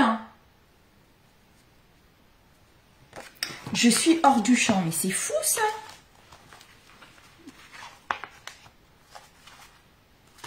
Je suis hors du champ, mais c'est fou ça!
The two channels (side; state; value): both; identical; correlation 1.00